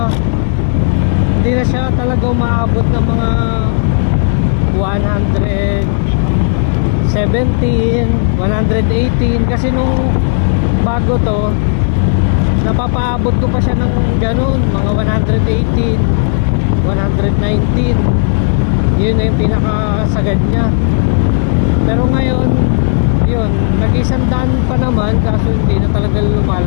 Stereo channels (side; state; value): right; silent; digital silence